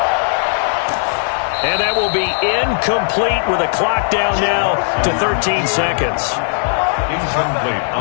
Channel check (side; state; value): right; silent; 58 dB below the other